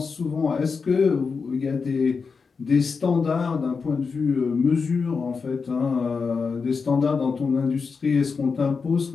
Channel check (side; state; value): right; quieter; 5.1 dB